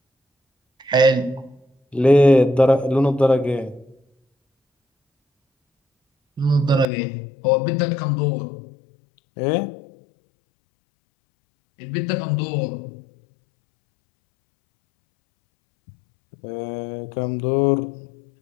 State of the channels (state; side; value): drops out; right; at 6.9 s